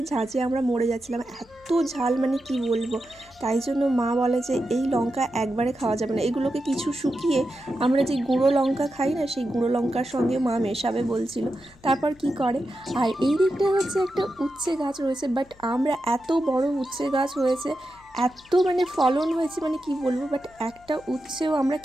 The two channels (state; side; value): noise; left; hum, 27 dB below the sound